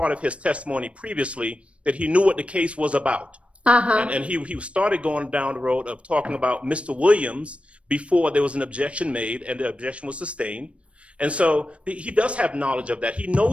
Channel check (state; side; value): late; left; 0.061 ms